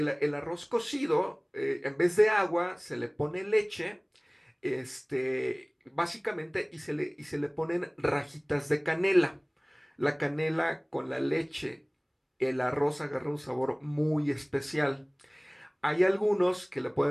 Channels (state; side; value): identical; both; correlation 1.00